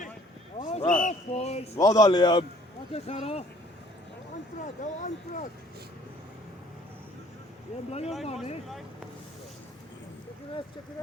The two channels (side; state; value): both; normal; correlation 0.57